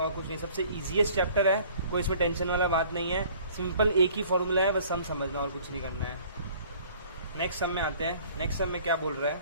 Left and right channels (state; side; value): inverted; both; correlation -0.53